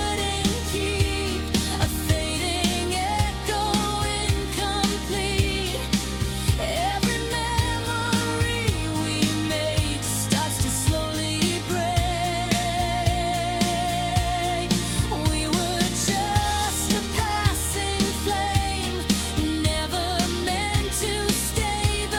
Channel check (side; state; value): both; identical; correlation 1.00